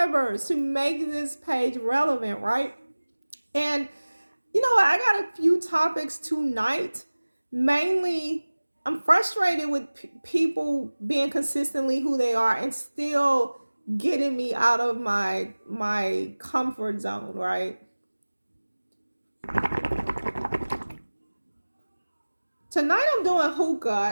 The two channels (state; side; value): inverted; both; correlation -1.00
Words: to make this page relevant, right? And you know what? I got a few topics tonight. Mainly, I'm frustrated with people being consistently who they are and still getting me out of my comfort zone, right? Tonight I'm doing